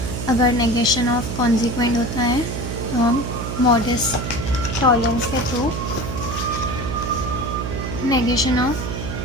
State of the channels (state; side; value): noise; right; hum, 5 dB below the sound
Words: अगर नेगेशन ऑफ कॉन्सिक्वेंट होता है तो हम मॉडस टॉलरेंस के थ्रू नेगेशन ऑफ,